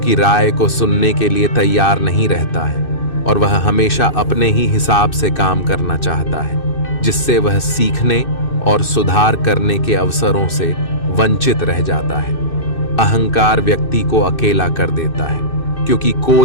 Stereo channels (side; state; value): right; late; 2.6 ms